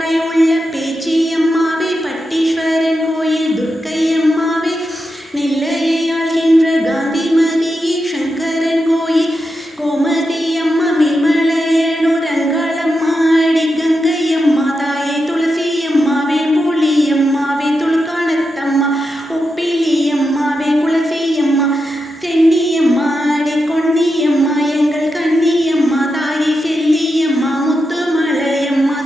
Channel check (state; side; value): normal; both; correlation 0.88